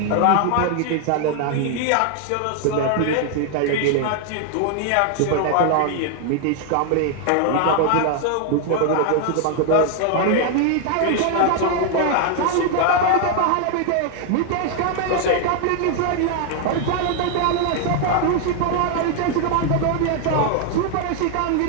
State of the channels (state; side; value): different; both; correlation 0.00